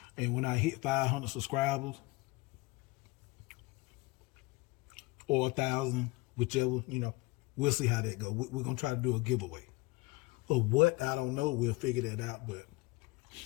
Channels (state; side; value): quieter; right; 23.2 dB